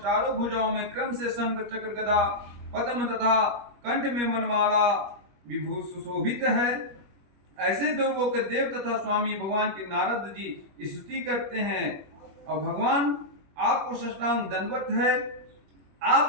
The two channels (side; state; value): left; late; 21 ms